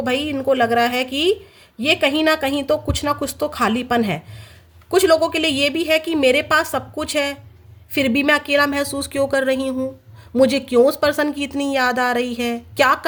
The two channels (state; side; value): identical; both; correlation 1.00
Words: भाई इनको लग रहा है कि ये कहीं ना कहीं तो कुछ ना कुछ तो खालीपन है। कुछ लोगों के लिए ये भी है कि मेरे पास सब कुछ है फिर भी मैं अकेला महसूस क्यों कर रही हूँ, मुझे क्यों उस पर्सन की इतनी याद आ रही है, क्या